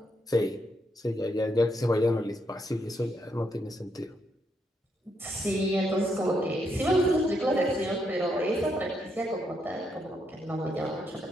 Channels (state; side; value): normal; both; correlation 0.78